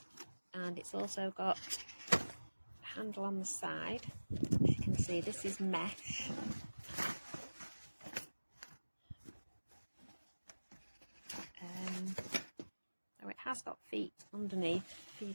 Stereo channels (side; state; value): both; inverted; correlation -1.00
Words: and it's also got a handle on the side. As you can see, this is mesh. So it has got feet underneath for you